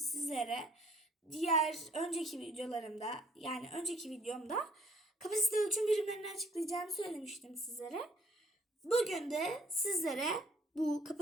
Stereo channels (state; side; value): normal; both; correlation 0.61